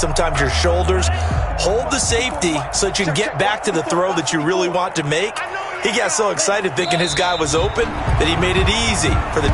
your shoulders. Hold the safety so that you can get back to the throw that you really want to make. He got so excited thinking his guy was open that he made it easy for the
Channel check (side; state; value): both; identical; correlation 1.00